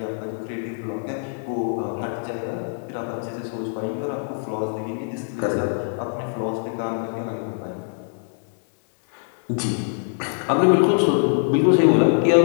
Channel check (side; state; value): right; silent; digital silence